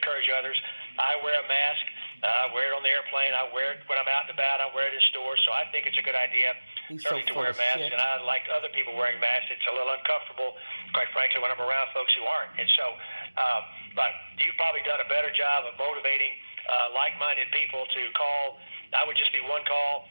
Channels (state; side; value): inverted; both; correlation -1.00